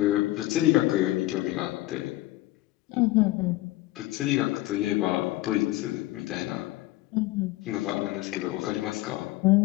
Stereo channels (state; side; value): quieter; right; 17.7 dB